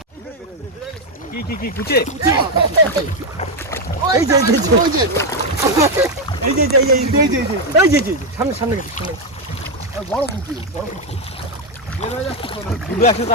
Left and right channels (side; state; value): both; normal; correlation 0.05